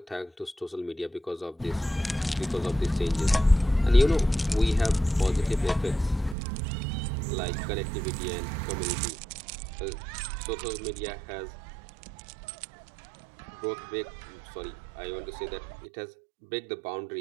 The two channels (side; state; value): left; drops out; at 6.4 s